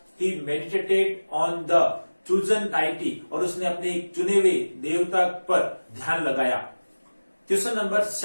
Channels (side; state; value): both; inverted; correlation -1.00